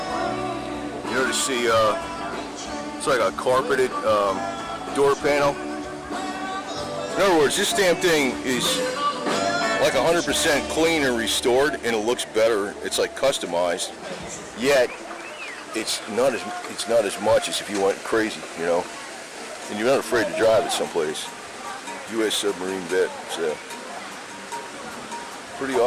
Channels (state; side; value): identical; both; correlation 1.00